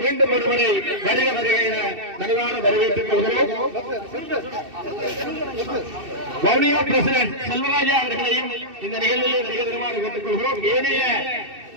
மீண்டும் ஒருவரை வருக வருகிற நல்வான வரவேற்றுக் கொள்கிறோம். வவுனியா பிரசிடென்ட் செல்வராஜா அவர்களையும் இந்த நிகழ்வில் வருகை தருமாறு கேட்டுக்கொள்கிறோம். ஏனைய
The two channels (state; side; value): late; left; 2.7 ms